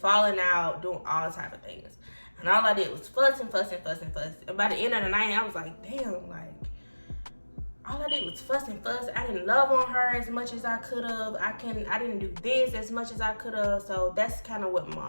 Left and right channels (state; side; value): inverted; both; correlation -1.00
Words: out, doing all type of things. And all I did was fussing. And by the end of the night, I was like, damn, like, all I did was fuss. I didn't love on her as much as I could have. I didn't do this as much as I could have. So that's kind of what